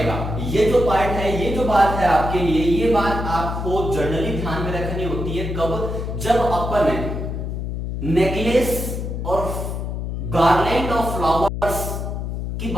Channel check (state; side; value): noise; left; hum, 4 dB below the sound